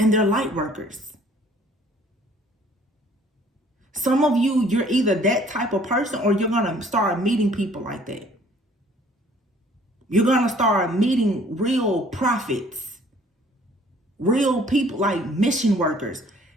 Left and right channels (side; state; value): both; normal; correlation 0.57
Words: they're light workers. Some of you, you're either that type of person or you're going to start meeting people like that. You're going to start meeting real prophets, real people like mission workers,